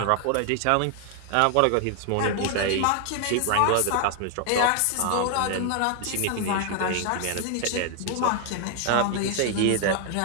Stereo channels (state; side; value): different; both; correlation 0.00